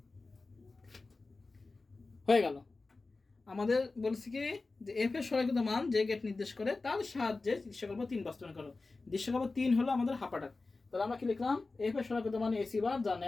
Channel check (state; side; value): quieter; right; 3.6 dB